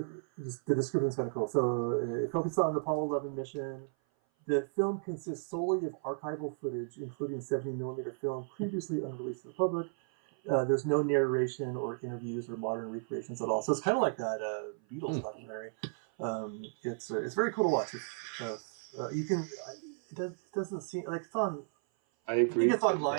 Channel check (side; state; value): left; silent; 55 dB below the other